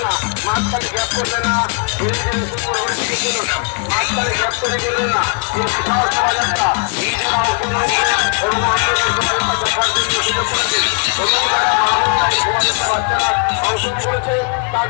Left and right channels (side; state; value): right; quieter; 37.1 dB